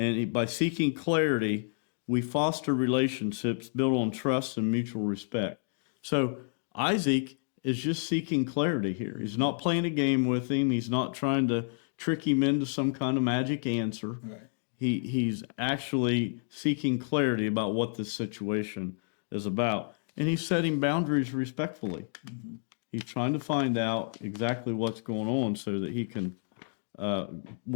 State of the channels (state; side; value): silent; right; digital silence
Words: by seeking clarity, we foster relationships built on trust and mutual respect. So Isaac is just seeking clarity here. He's not playing a game with him. He's not trying to trick him into some kind of magic answer. Right. He's actually seeking clarity about what this situation is about. And he's setting boundaries respectfully. He's trying to find out exactly what's going on so that he can